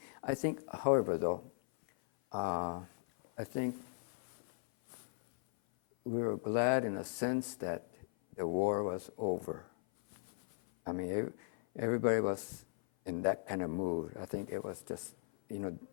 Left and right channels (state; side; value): silent; right; 53 dB below the other